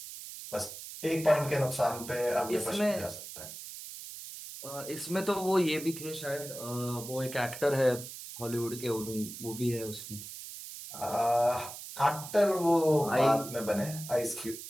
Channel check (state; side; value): noise; right; hiss, 11 dB below the sound